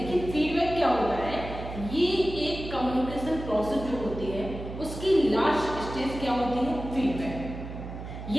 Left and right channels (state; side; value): noise; right; hum, 9 dB below the sound